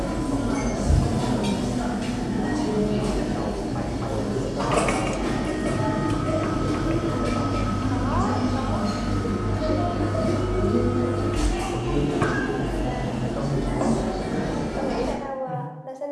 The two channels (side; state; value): both; identical; correlation 1.00